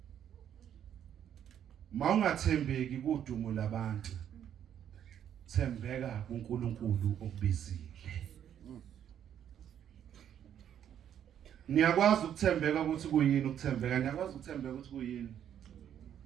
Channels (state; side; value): quieter; left; 9.7 dB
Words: mawungathembeki kudumo labantu, thembeka kuNkulunkulu okubizile. Niyakwazi ukuthembeka ukuthi kuyini ukuthembeka? Niyakwazi ukuthembeka ukuthi kuyini?